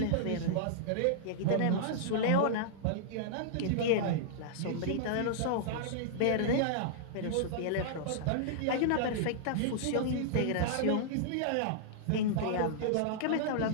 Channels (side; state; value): both; different; correlation -0.02